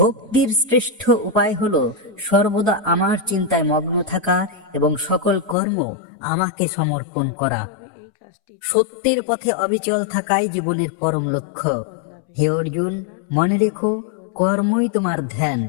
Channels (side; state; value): right; drops out; at 5.6 s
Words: শ্রেষ্ঠ উপায় হলো সর্বদা আমার চিন্তায় মগ্ন থাকা এবং সকল কর্ম আমাকে সমর্পণ করা। সত্যের পথে অবিচল থাকাই জীবনের পরম লক্ষ্য। হে অর্জুন, মনে রেখো, কর্মই তোমার ধ্যান।